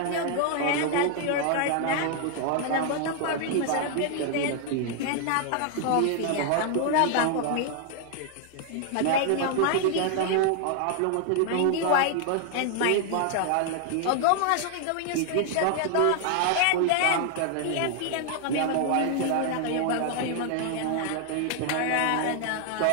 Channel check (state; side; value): different; both; correlation 0.00